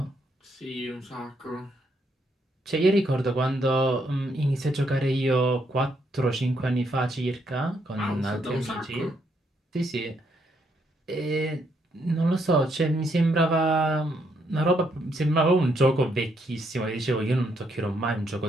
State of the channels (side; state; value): both; normal; correlation 0.75